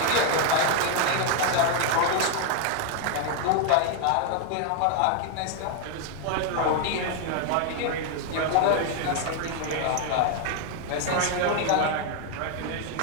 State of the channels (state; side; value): different; both; correlation 0.01